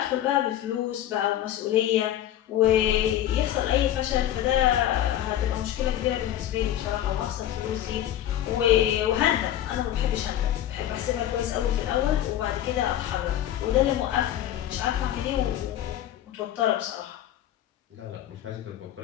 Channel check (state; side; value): quieter; right; 12.0 dB